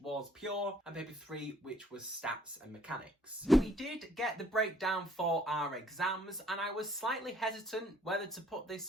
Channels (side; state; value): both; normal; correlation 0.60